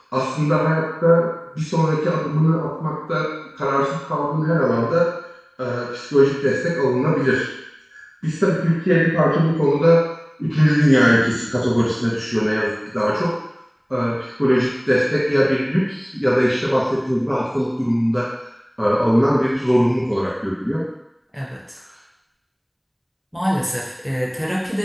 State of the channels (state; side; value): identical; both; correlation 1.00